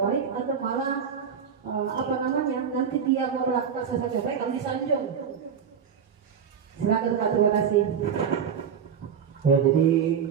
atau malah nanti dia melakukan sesuatu yang baik kalau disanjung? Silakan Pak, terima kasih. Ya, jadi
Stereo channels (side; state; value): left; quieter; 7.2 dB